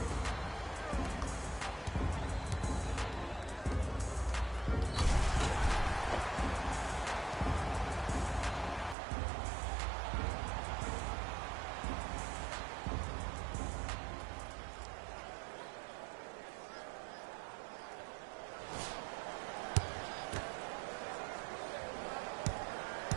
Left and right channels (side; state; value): left; drops out; at 9.0 s